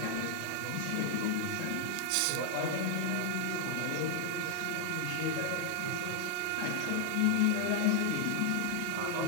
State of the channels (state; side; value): different; both; correlation 0.00